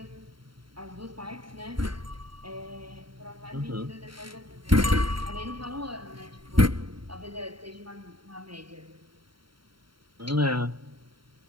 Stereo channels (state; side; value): late; left; 0.73 ms